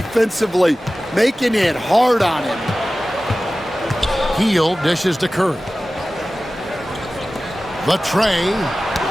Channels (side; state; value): both; normal; correlation 0.96